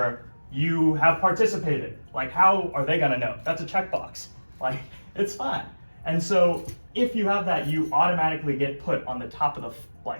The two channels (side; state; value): both; inverted; correlation -1.00